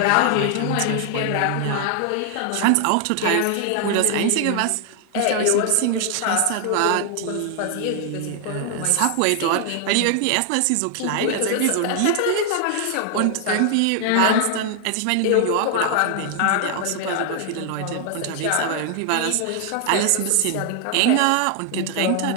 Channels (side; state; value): both; different; correlation 0.00